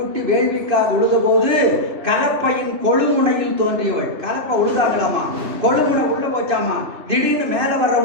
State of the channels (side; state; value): left; late; 2.6 ms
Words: வேள்விக்காக உழுத போது கலப்பையின் கொழுமுனையில் தோன்றியவள். கலப்பை உழுதாங்களாமா, கொழுமுனை உள்ள போச்சாமா. திடீர்னு மேலே வர்ற